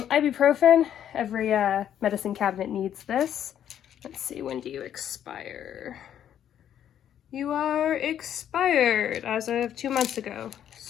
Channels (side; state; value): right; quieter; 10.1 dB